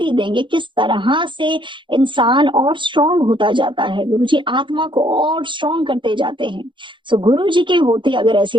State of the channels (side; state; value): left; late; 0.23 ms